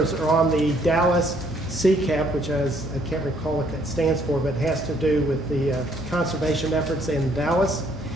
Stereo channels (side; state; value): both; normal; correlation 0.66